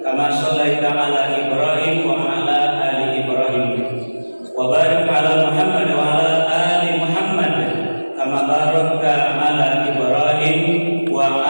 kama shallaita 'ala Ibrahim wa 'ala ali Ibrahim. Wa barik 'ala Muhammad wa 'ala ali Muhammad kama barakta 'ala Ibrahim wa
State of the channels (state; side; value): inverted; both; correlation -1.00